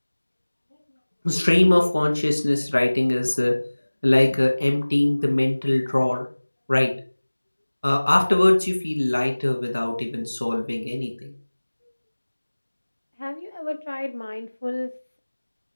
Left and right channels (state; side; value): inverted; both; correlation -1.00